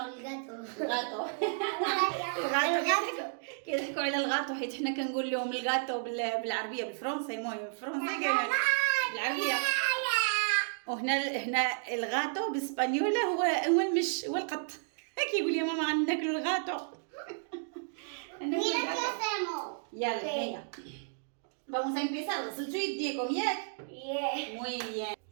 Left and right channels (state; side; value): silent; left; digital silence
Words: الغاطو كيضحكوا على الغاطو حيت حنا كنقول لهم الغاطو بالعربيه بالفرنسي. المهم بالفرنسي بالعربيه، وهنا الغاطو بالاسبانيوله هو المش، هو القط. كيقول يا ماما غناكلوا الغاطو. يلا هيا vamos a empezar. غسلتوا يديكم ياك؟ muy bien.